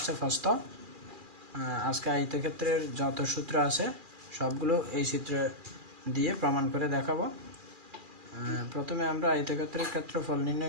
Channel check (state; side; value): late; left; 2.4 ms